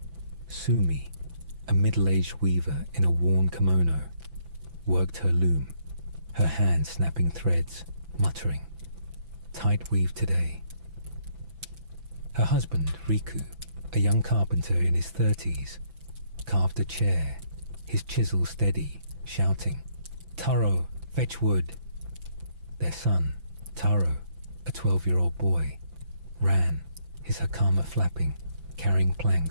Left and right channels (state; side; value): late; left; 6.0 ms